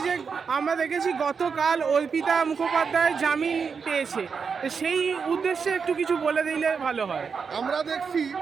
যে আমরা দেখেছি গতকাল অর্পিতা মুখোপাধ্যায় জামিন পেয়েছে, তো সেই উদ্দেশ্যে একটু কিছু বলে দিলে ভালো হয়। আমরা দেখছি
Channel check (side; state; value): left; quieter; 5.8 dB